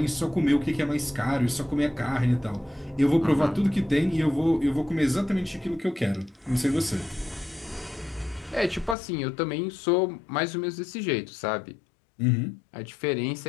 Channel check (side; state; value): right; drops out; at 9.0 s